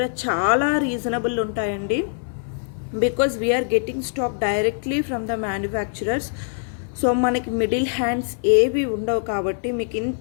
చాలా రీజనబుల్ ఉంటాయండి. Because we are getting stock directly from the manufacturers. So మనకి మిడిల్ హ్యాండ్స్ ఏవి ఉండవు కాబట్టి మీకు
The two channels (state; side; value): silent; right; 56 dB below the other